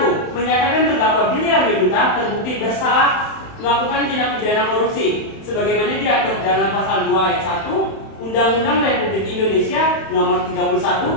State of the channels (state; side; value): late; right; 31 ms